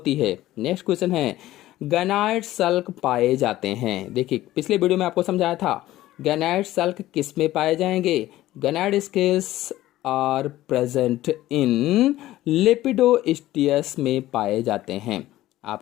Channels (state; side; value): quieter; right; 15.3 dB